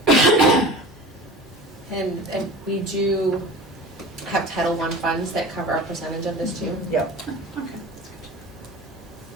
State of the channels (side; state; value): both; normal; correlation 0.36